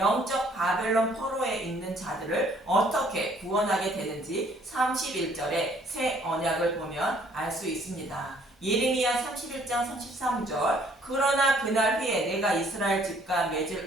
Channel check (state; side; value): normal; both; correlation 0.61